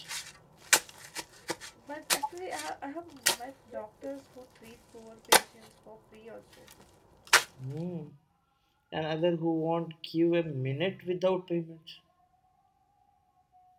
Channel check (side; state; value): both; identical; correlation 1.00